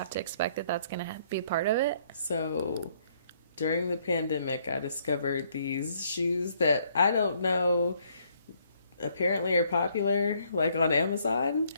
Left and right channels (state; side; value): inverted; both; correlation -0.67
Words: to expect that that's going to be a part of it. So during the pandemic, I discovered these shoes that I don't know apparently are popular like on Amazon.